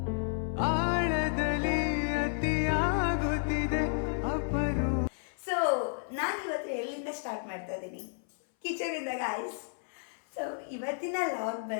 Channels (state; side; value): silent; right; 57 dB below the other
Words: ಆಳದಲ್ಲಿ ಅತಿಯಾಗುತ್ತಿದೆ ಅಪರು. ಸೊ ನಾನು ಇವತ್ತು ಎಲ್ಲಿಂದ ಸ್ಟಾರ್ಟ್ ಮಾಡ್ತಾ ಇದ್ದೀನಿ? ಕಿಚನಿಂದ ಗಾಯ್ಸ್. ಸೊ ಇವತ್ತಿನ ಲಾಗ್